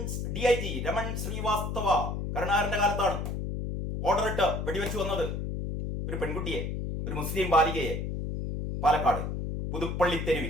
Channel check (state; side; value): noise; left; hum, 3 dB below the sound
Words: DIG രമൺ ശ്രീവാസ്തവ കരുണാകരന്റെ കാലത്താണ് ഓർഡർ ഇട്ട് വെടിവെച്ച് വന്നത് ഒരു പെൺകുട്ടിയെ, ഒരു മുസ്ലിം ബാലികയെ, പാലക്കാട് പുതുപ്പള്ളി